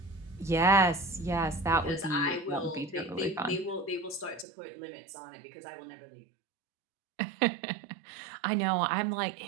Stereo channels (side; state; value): left; drops out; at 4.5 s